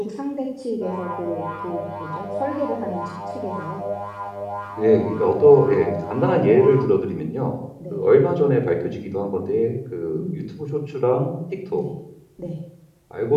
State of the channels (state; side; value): identical; both; correlation 1.00